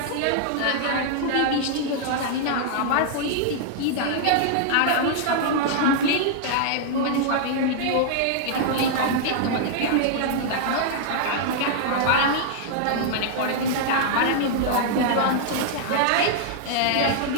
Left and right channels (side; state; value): both; different; correlation 0.00